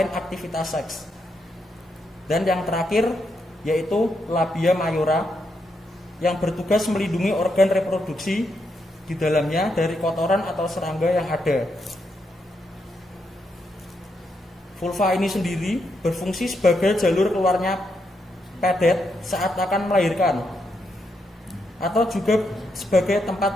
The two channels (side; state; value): both; normal; correlation 0.81